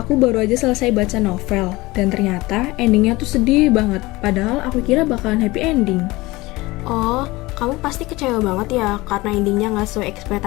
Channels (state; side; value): quieter; right; 20.9 dB